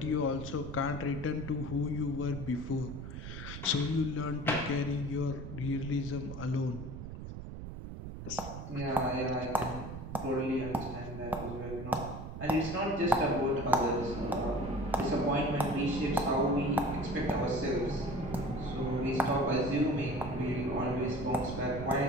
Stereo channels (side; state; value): right; noise; rumble, 9 dB below the sound